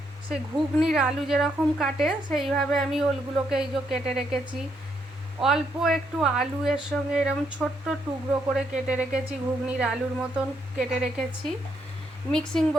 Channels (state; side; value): normal; both; correlation 0.76